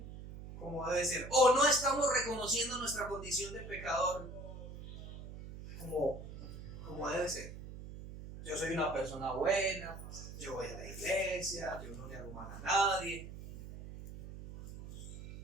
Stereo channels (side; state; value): right; noise; hum, 12 dB below the sound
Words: como debe ser. O no estamos reconociendo nuestra condición de pecador como debe ser. Yo soy una persona buena, yo voy a la iglesia, yo no le hago mal a nadie.